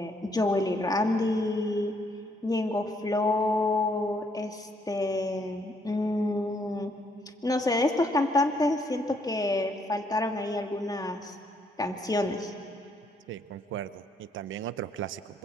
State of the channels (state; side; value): normal; both; correlation 0.70